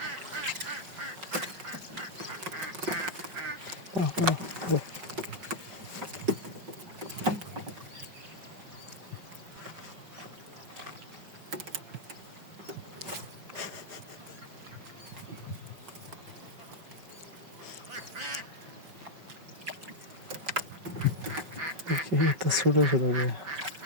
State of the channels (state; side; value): late; left; 5.4 ms